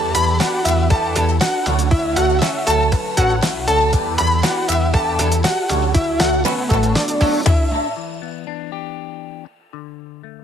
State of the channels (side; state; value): both; normal; correlation 0.74